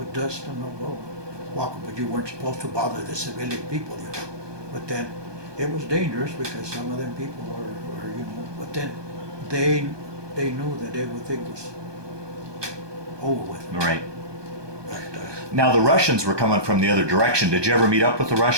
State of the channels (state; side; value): late; left; 1.2 ms